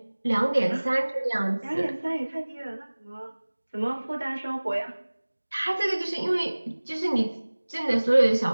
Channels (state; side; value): inverted; both; correlation -1.00